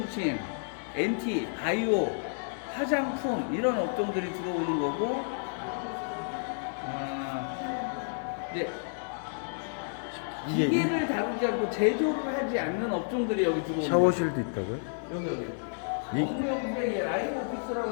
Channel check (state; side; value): silent; right; digital silence